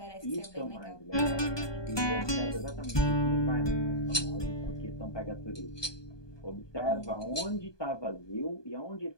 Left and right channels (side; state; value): right; late; 1.2 ms